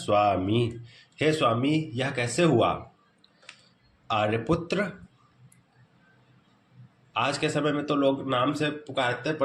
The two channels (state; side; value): identical; both; correlation 1.00